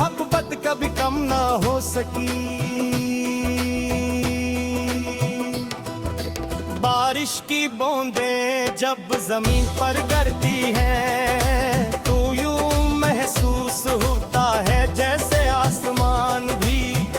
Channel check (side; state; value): both; identical; correlation 1.00